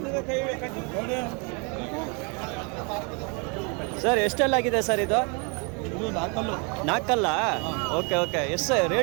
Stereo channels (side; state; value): left; quieter; 33.5 dB